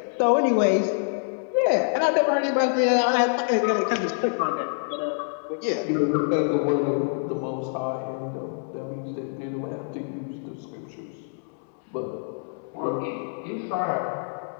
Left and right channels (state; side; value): silent; right; digital silence